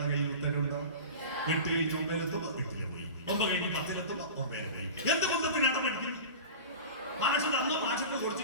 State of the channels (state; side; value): inverted; both; correlation -0.33